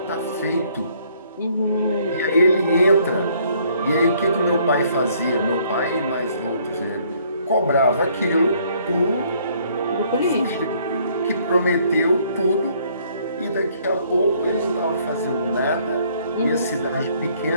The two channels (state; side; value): inverted; both; correlation -0.64